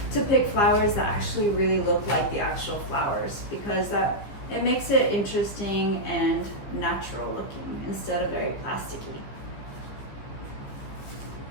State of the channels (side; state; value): right; late; 15 ms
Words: pick flowers that actually really look like the actual flowers, because it makes it interesting and natural looking instead of very plasticky.